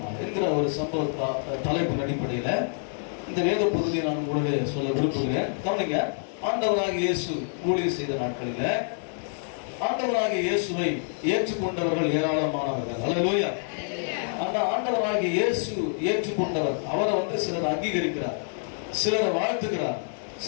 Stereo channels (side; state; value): right; silent; digital silence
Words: என்கிற ஒரு சம்பவ தலைப்பின் அடிப்படையில் இந்த வேத பகுதியை நான் உங்களுடைய சொல்ல விரும்புகிறேன். கவனிங்க. ஆண்டவராகிய இயேசு ஊழியம் செய்த நாட்களில் ஆண்டவராகிய இயேசுவை ஏற்றுக்கொண்டவர்கள் ஏராளமானவர்கள். ஹல்லேலூயா. அந்த ஆண்டவராகிய இயேசு ஏற்றுக்கொண்டவர், அவரை சிலர் அங்கீகரிக்கிறார், சிலரை வாழ்த்துகிறார்,